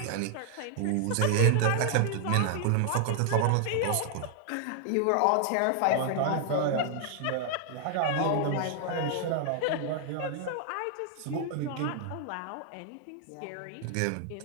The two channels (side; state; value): both; different; correlation 0.00